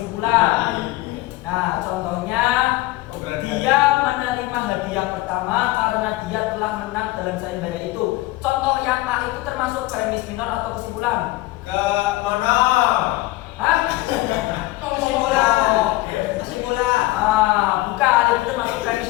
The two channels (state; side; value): quieter; right; 18.8 dB